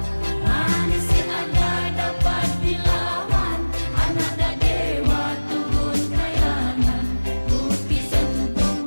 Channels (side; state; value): both; inverted; correlation -1.00